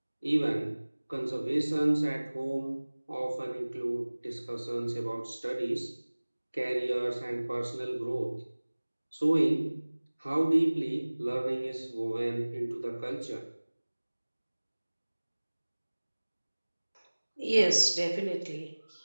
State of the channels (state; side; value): inverted; both; correlation -1.00